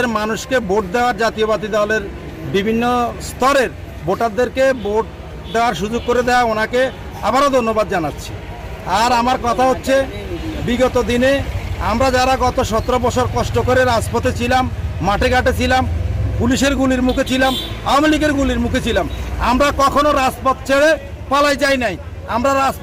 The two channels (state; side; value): identical; both; correlation 1.00